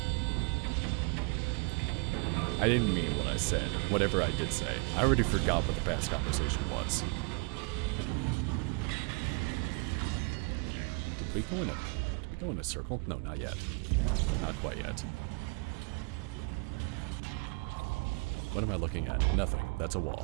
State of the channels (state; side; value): quieter; left; 34.1 dB